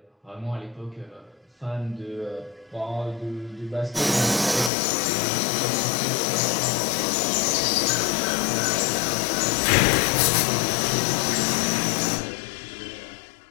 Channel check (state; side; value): drops out; right; at 4.7 s